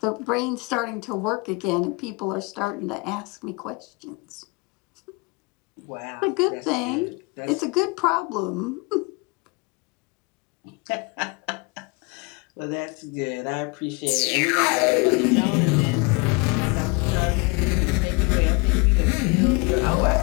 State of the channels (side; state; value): right; quieter; 28.4 dB